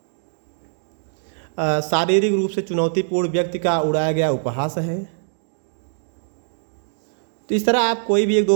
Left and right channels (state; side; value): silent; left; digital silence